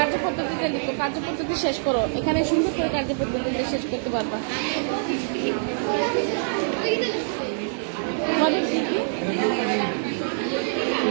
লিখো, কার্যপদ্ধতি শেষ করো। এখানে সুন্দর করে কার্যপদ্ধতিতে শেষ করতে পারবা। তোমাদের কি কি?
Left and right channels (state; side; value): silent; left; digital silence